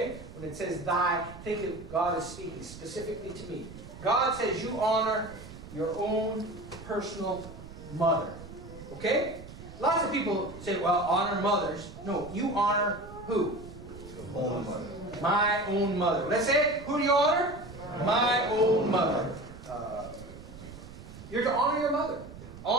When it says thy, think of God is speaking specifically to me. God says you honor your own personal mother. Okay? Lots of people say, well, honor mothers. No, you honor who? Your own mother. My own mother. Let's say it. Who do you honor? My own mother. You're to honor your mother.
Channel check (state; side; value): noise; right; rumble, 15 dB below the sound